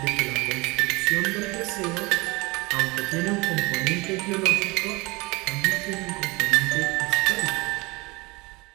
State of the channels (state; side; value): quieter; left; 24.5 dB